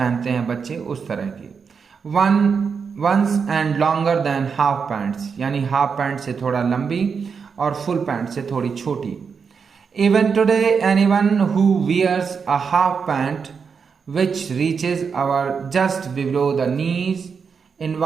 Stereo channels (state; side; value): quieter; left; 5.9 dB